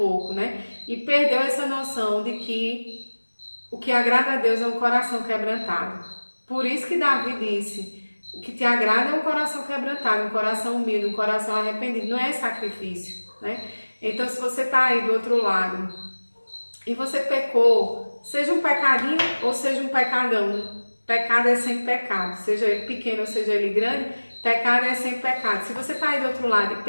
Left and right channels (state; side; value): inverted; both; correlation -1.00